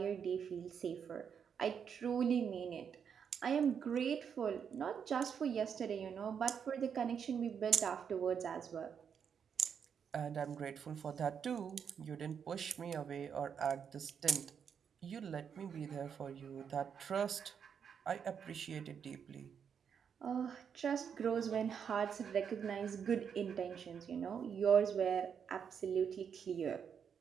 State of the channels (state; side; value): quieter; left; 7.3 dB